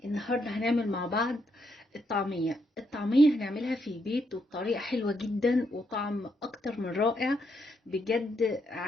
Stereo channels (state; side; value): normal; both; correlation 0.77